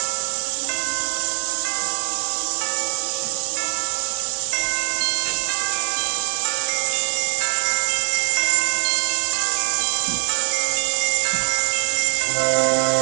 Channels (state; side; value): silent; left; digital silence